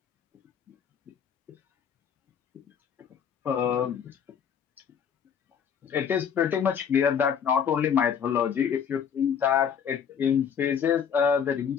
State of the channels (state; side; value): quieter; right; 7.6 dB